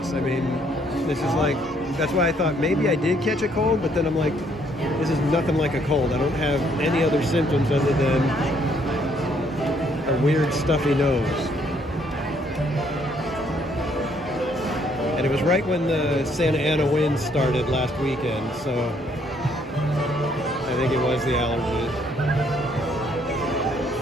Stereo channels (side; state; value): both; normal; correlation 0.67